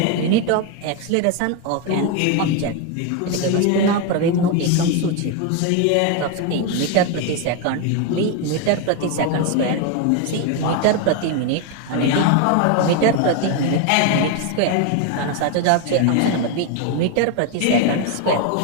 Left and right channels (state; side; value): different; both; correlation 0.01